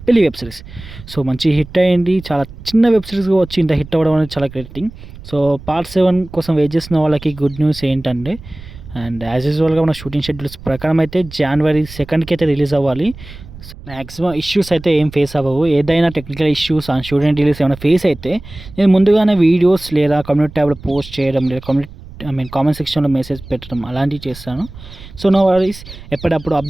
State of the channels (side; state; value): right; noise; rumble, 16 dB below the sound